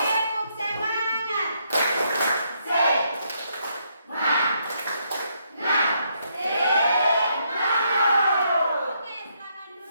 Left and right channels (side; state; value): both; inverted; correlation -0.75